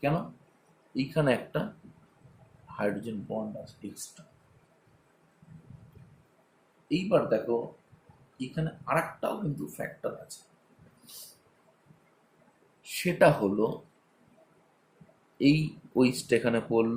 কেন? এইখানে একটা হাইড্রোজেন বন্ড আছে এক্সট্রা। এইবার দেখো এখানে আরেকটাও কিন্তু ফ্যাক্টর আছে, সেটা হলো এই ওইচটা এখানে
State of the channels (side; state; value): both; identical; correlation 1.00